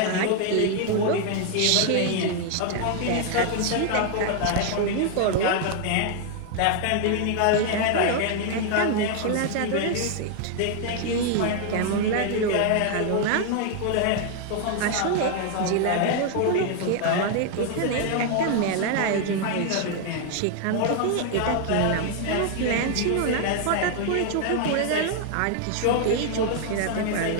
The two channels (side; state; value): both; different; correlation 0.00